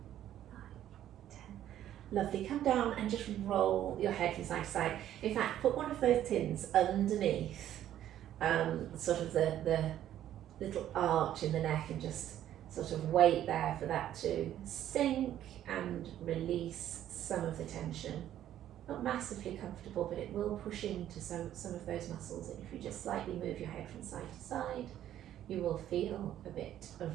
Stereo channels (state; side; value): quieter; left; 11.7 dB